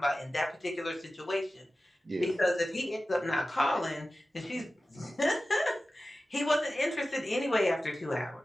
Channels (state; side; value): normal; both; correlation 0.95